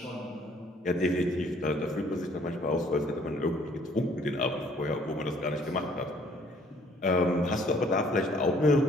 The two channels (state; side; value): normal; both; correlation 0.60